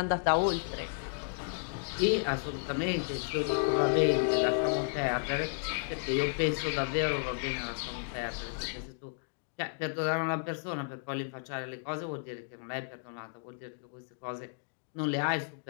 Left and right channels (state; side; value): silent; right; digital silence